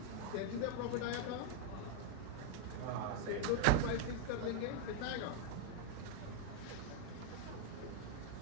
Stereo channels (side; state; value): both; different; correlation 0.01